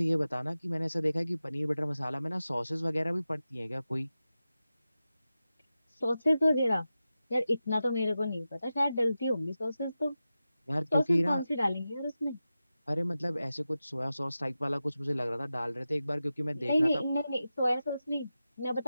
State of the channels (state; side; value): inverted; both; correlation -0.93